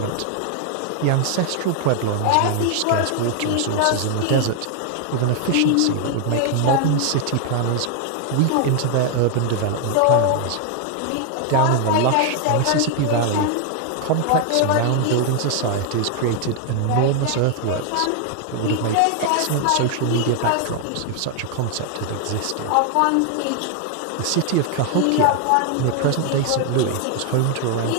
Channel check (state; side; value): different; both; correlation 0.00